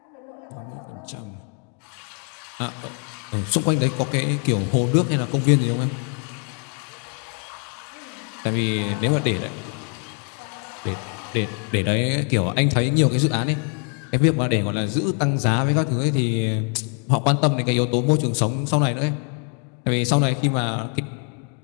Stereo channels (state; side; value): quieter; right; 39.5 dB